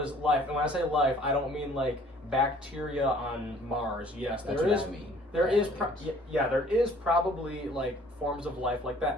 life, and when I say life, I don't mean like bacteria on Mars. Yes, That's there what is. I mean. There is, Aliens. there is probably like forms of life like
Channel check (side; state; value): both; normal; correlation 0.55